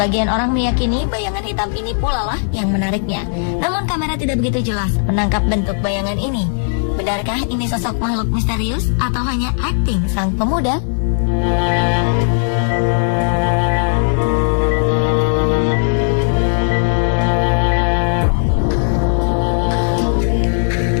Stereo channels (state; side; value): silent; right; 68 dB below the other